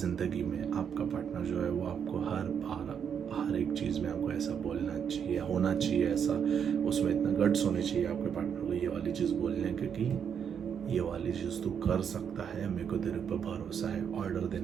में आपका पार्टनर जो है वो आपको हर एक चीज़ में आपको ऐसा बोलना चाहिए, होना चाहिए ऐसा, उसमें इतना गट्स होने चाहिए आपके पार्टनर को ये वाली चीज़ बोलने के कि ये वाली चीज़ तू कर सकता है, मेरे को तेरे पर भरोसा है। ऑर्डर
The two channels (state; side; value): quieter; left; 7.7 dB